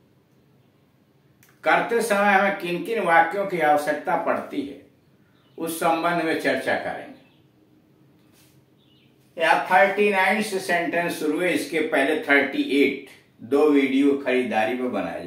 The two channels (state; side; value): identical; both; correlation 1.00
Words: करते समय हमें किन किन वाक्यों की आवश्यकता पड़ती है उस संबंध में चर्चा करेंगे। यहाँ 39 से सेंटेंस शुरू है, इसके पहले 38 दो वीडियो खरीदारी में बनाए